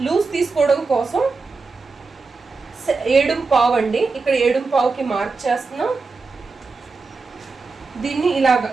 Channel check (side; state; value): left; quieter; 4.2 dB